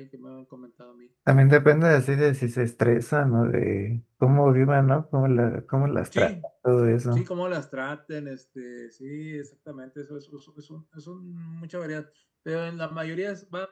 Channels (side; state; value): both; identical; correlation 1.00